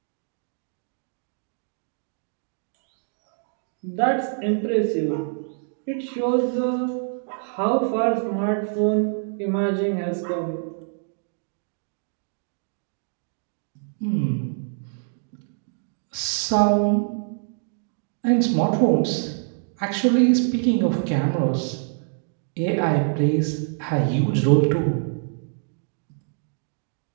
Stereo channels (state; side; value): silent; left; digital silence